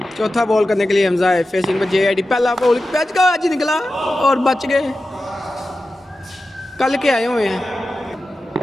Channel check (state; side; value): normal; both; correlation 0.93